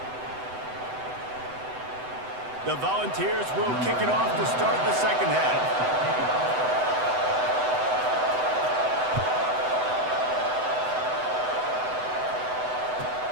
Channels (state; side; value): late; left; 8.0 ms